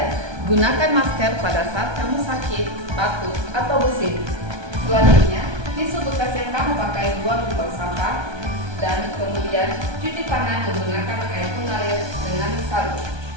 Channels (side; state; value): left; late; 1.3 ms